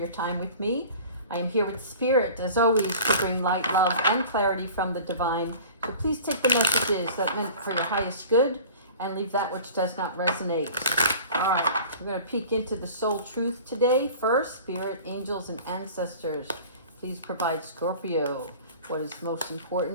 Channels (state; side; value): inverted; both; correlation -0.42